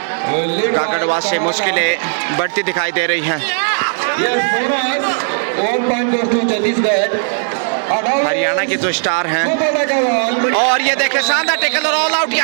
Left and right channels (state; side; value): silent; left; digital silence